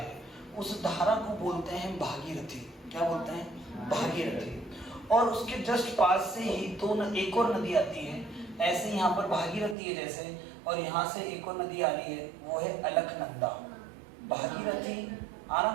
उस धारा को बोलते हैं भागीरथी। क्या बोलते हैं? भागीरथी। और उसके जस्ट पास से ही एक और नदी आती है। ऐसे यहाँ पर भागीरथी है जैसे, और यहाँ से एक और नदी आ रही है, वो है अलकनंदा। भागीरथी,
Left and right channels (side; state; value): left; drops out; at 9.8 s